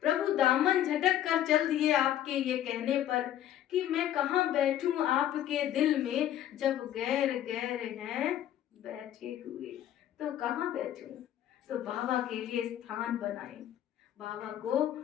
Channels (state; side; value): quieter; right; 11.6 dB